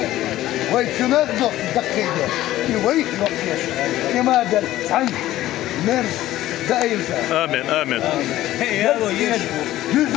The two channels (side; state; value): right; quieter; 14.7 dB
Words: وي كنا دقيقة وي كما دل عن مرز دائم آمين آمين